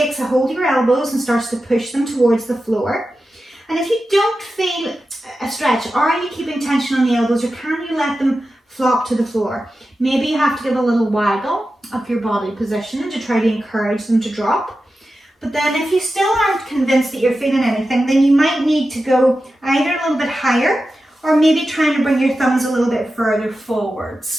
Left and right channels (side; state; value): both; normal; correlation 0.92